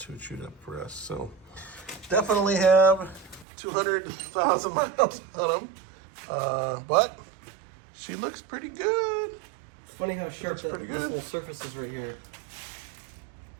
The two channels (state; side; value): drops out; left; at 3.5 s